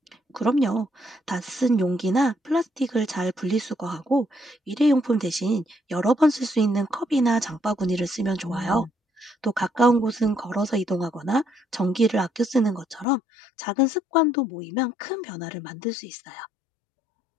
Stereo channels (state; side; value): drops out; right; at 13.1 s